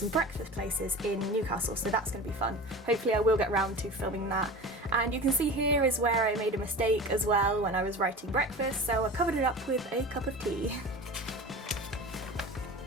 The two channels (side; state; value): both; normal; correlation 0.34